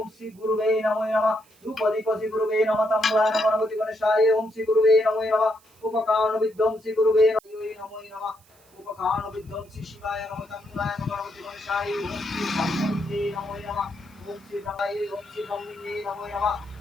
শ্রী গুরুবে নমো নমঃ রূপদীপতি গুরুবে নমঃ তাম্বুলায় গণপতি গণেশায় ওম শ্রী গুরুবে নমো নমঃ উপকারণ বিধ্বংসী গুরুবে নমো নমঃ উপকারণ বিধ্বংসী শিবায় নমঃ তাম্বুলায় গণপতি গণেশায় ওম শ্রী ব্রহ্মণে নমো নমঃ ওম শ্রী ব্রহ্মায় ওম শ্রী ব্রহ্মণে নমো নমঃ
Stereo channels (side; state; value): right; noise; hiss, 30 dB below the sound